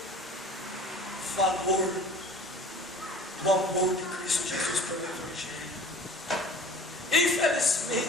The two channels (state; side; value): normal; both; correlation 0.44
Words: valor do amor de Cristo Jesus pelo evangelho.